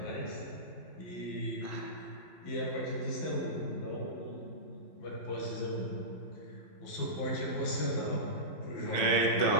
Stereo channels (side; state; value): right; late; 12 ms